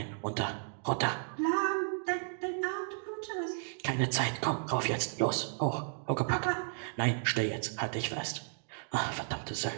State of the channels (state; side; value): silent; left; digital silence